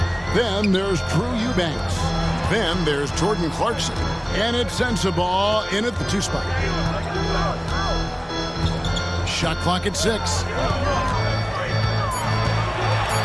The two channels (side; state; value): both; identical; correlation 1.00